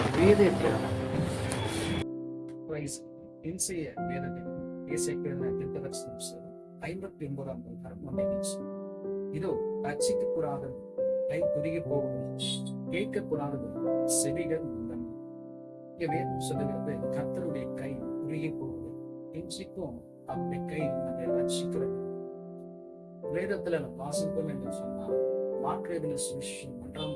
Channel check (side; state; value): both; identical; correlation 1.00